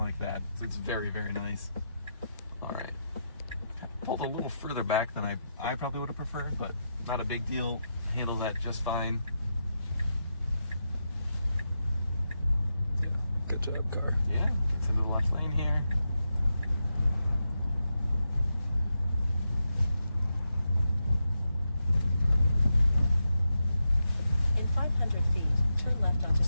that. So it's very, very nice. All right, pulled a little further back than I probably would have preferred, but not a big deal. Handle that just fine. Yeah, good job, car. Yeah, gets into the left lane here. In 500 feet, turn left onto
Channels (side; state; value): both; inverted; correlation -0.86